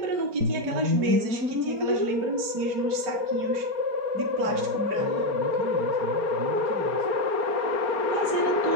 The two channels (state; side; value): late; left; 5.1 ms